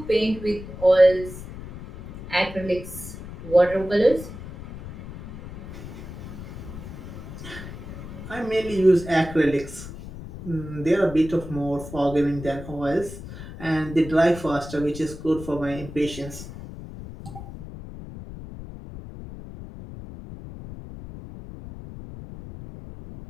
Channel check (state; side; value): noise; left; rumble, 12 dB below the sound